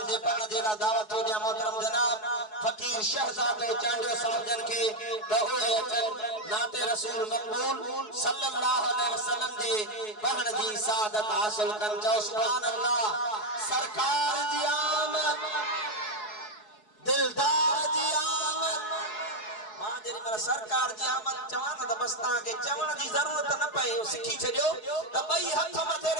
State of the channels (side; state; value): right; late; 4.7 ms